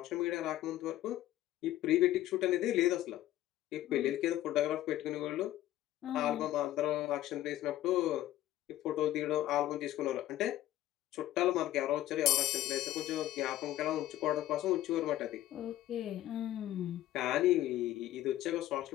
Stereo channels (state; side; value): quieter; right; 14.2 dB